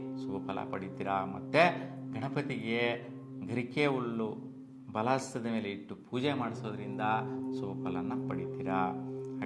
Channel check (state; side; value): identical; both; correlation 1.00